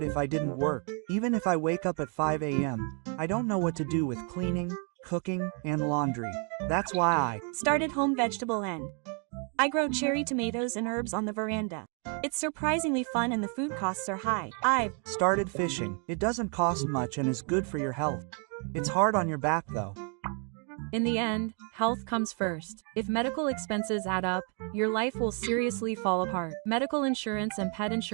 if I didn't work. Even if I wake up at 5 a.m., I don't know what to do with cleaning, cooking, and laundry. That's why I started home vegetable and I grow cherry tomatoes and herbs on the veranda. It's surprisingly fun and the food costs are high. I've started fishing. It doesn't cost much and is good for your health. It's hard on your back though. In the end, health comes first. If medical expenses add up, your life will seriously fall apart. Medical insurance and pet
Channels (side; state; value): left; quieter; 39.1 dB